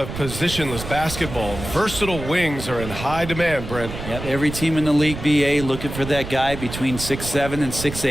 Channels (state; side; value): noise; right; rumble, 9 dB below the sound